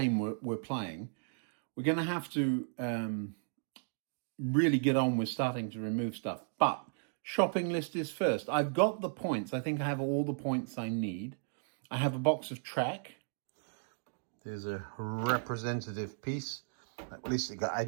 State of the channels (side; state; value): left; silent; digital silence